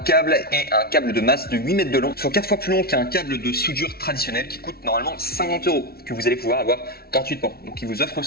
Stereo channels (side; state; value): right; late; 0.44 ms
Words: et un câble de masse de 8 mètres de long, soit 4 fois plus long qu'un câble de soudure traditionnel qui coûte normalement 50 €, que vous allez pouvoir avoir gratuitement. Donc il vous offre